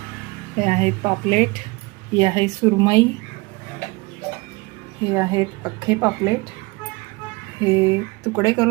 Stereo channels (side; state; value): left; quieter; 25.0 dB